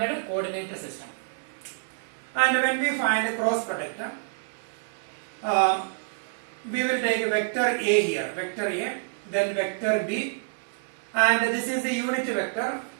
coordinate system. And when we find a cross product, we will take vector A here, vector A, then vector B, and this is the unit vector,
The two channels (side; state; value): left; silent; digital silence